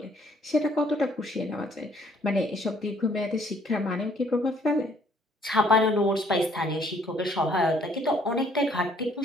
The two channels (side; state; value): both; normal; correlation 0.63